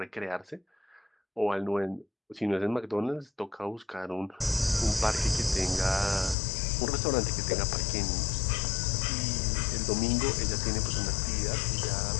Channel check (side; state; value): right; drops out; at 6.4 s